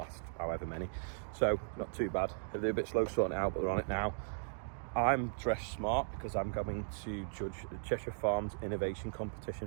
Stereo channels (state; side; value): silent; left; digital silence